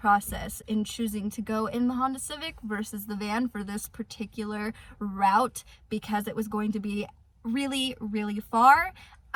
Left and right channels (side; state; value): both; identical; correlation 1.00